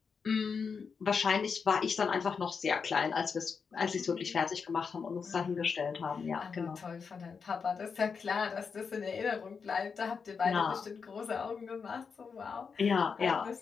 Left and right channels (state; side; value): quieter; right; 5.7 dB